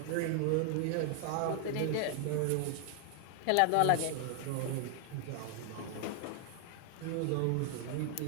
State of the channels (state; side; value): different; both; correlation 0.00